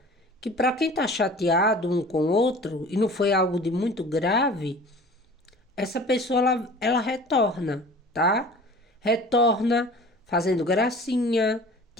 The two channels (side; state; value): both; normal; correlation 0.44